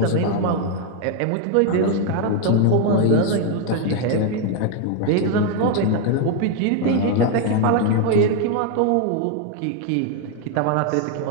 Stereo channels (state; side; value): different; both; correlation 0.01